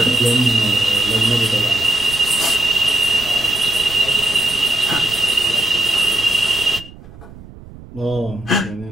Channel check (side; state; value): right; noise; rumble, 18 dB below the sound